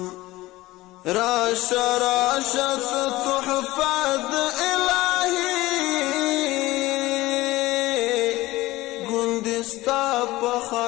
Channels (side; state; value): right; quieter; 18.4 dB